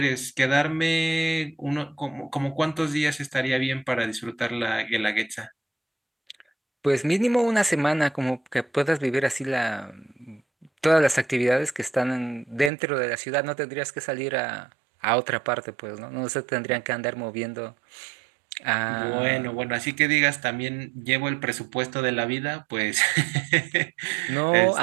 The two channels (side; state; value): left; drops out; at 12.7 s